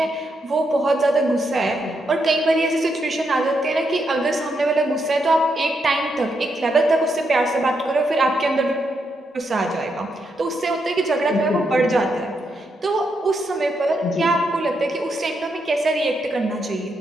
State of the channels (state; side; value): normal; both; correlation 0.80